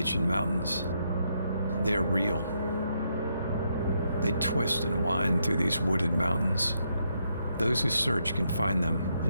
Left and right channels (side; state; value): both; inverted; correlation -0.78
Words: Mountains. They are real. They twist and wind through these wooded mountains. Those who search can find them